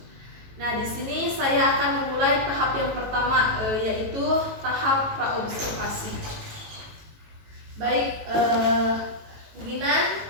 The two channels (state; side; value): late; left; 18 ms